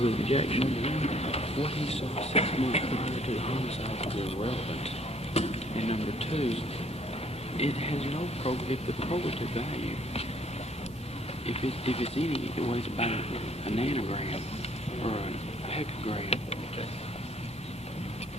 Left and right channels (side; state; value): both; normal; correlation 0.62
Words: objection? What he saw 6 months prior to the homicide is irrelevant. And number two, it has no the probative value. If it's any, it weighs about a nanogram or a hecagram.